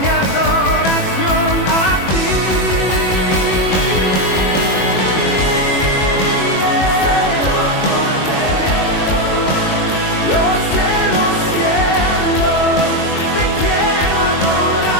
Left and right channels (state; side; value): late; right; 21 ms